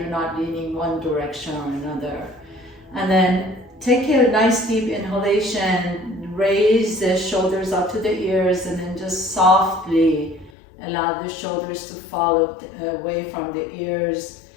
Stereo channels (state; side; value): drops out; right; at 10.5 s